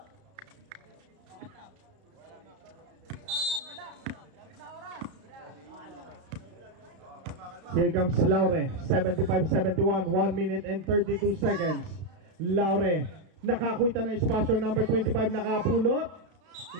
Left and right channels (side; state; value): left; late; 32 ms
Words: Here comes Laure, 75-71, 1 minute and 32 seconds. Laure, nakakuita na espasyo, number 25, nakapulot.